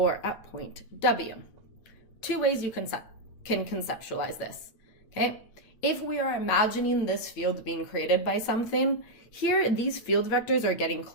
at point W, 2 ways you can conceptualize this, okay? If we are imagining this field being created by something, here these field vectors are getting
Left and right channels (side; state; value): right; late; 8.9 ms